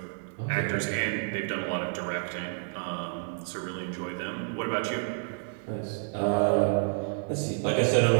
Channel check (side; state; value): left; silent; 57 dB below the other